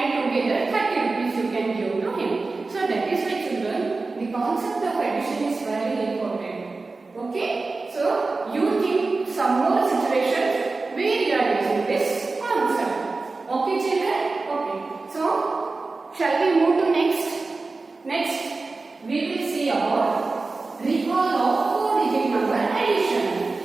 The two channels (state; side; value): quieter; left; 3.7 dB